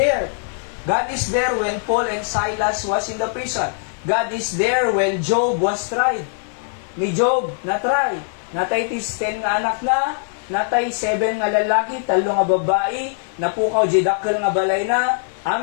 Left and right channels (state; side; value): silent; right; digital silence